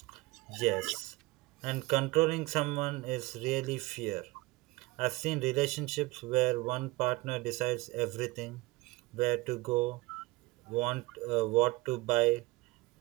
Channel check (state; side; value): quieter; left; 21.9 dB